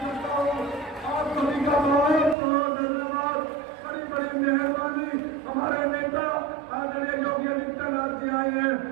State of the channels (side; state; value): left; drops out; at 2.4 s